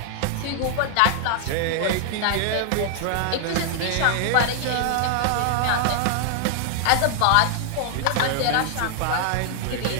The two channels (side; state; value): both; different; correlation 0.00